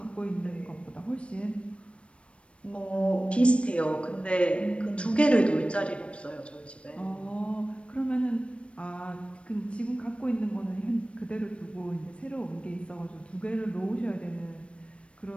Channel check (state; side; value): late; right; 0.060 ms